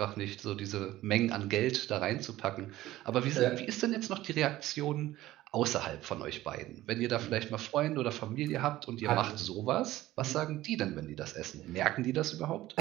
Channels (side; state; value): left; quieter; 15.8 dB